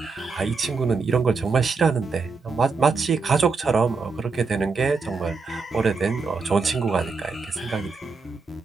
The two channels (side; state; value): left; quieter; 4.4 dB